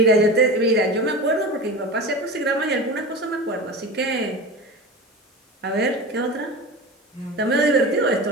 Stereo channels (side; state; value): both; normal; correlation 0.29